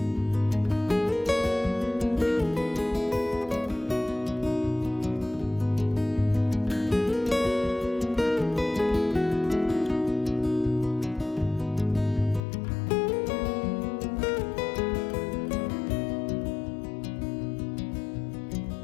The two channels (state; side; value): drops out; right; at 12.4 s